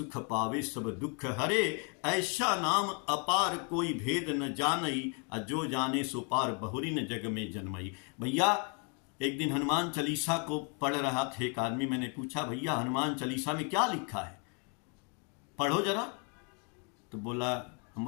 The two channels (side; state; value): right; quieter; 37.8 dB